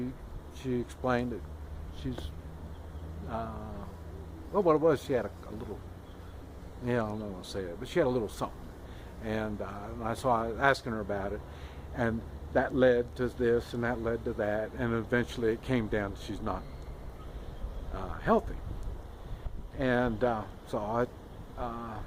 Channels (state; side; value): identical; both; correlation 1.00